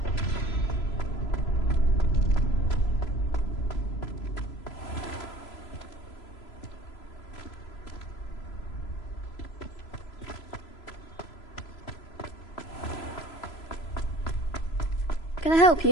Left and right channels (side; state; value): right; late; 3.0 ms